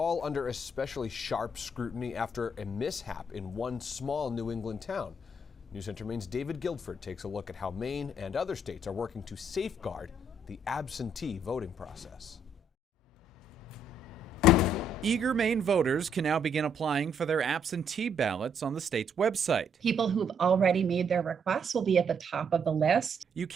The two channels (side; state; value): both; normal; correlation 0.71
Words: under especially sharp scrutiny after a mishap in one small New England town. News Center Maine's David Guilford takes a look at how Maine and other states are working to safeguard the absentee voting process. Eager Maine voters can now begin applying for their absentee ballots on the state's website. People who've already made their requests will be at the top of the list. You